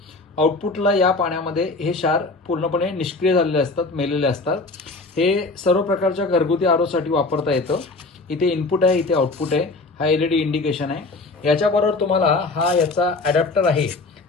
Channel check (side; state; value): right; quieter; 3.4 dB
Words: आउटपुटला या पाण्यामध्ये हे क्षार पूर्णपणे निष्क्रिय झालेले असतात, मेलेले असतात। हे सर्व प्रकारच्या घरगुती आरोसाठी वापरता येतं। इथे इनपुट आहे, इथे आउटपुट आहे, हा एलईडी इंडिकेशन आहे। याच्याबरोबर तुम्हाला हा याचा अडॅप्टर आहे